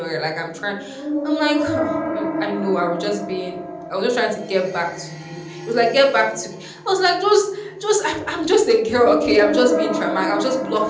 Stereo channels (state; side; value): identical; both; correlation 1.00